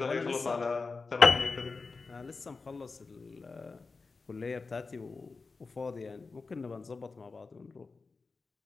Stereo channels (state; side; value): quieter; right; 4.2 dB